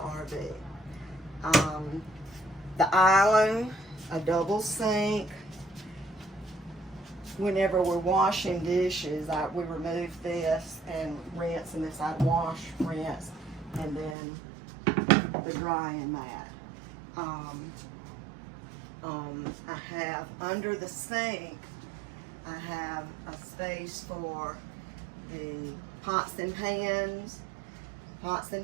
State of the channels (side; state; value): left; drops out; at 14.2 s